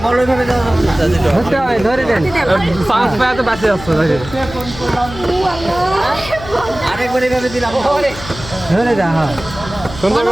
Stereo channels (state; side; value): noise; left; hum, 13 dB below the sound